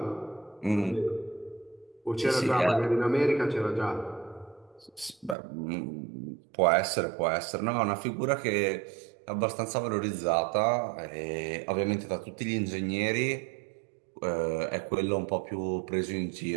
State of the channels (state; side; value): drops out; left; at 5.4 s